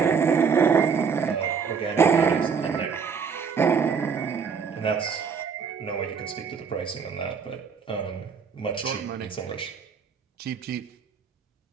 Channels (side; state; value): left; quieter; 6.1 dB